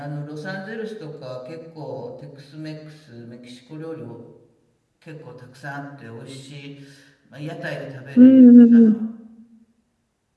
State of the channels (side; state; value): both; identical; correlation 1.00